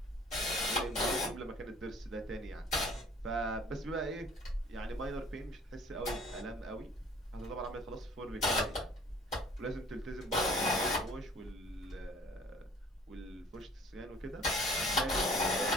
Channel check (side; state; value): both; normal; correlation 0.52